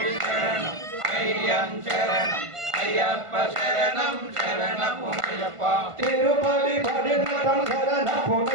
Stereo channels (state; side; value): late; left; 1.5 ms